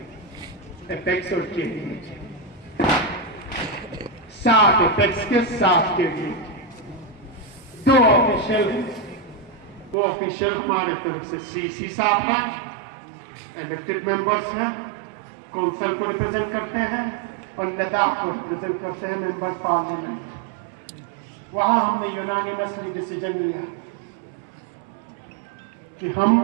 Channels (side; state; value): left; drops out; at 10.0 s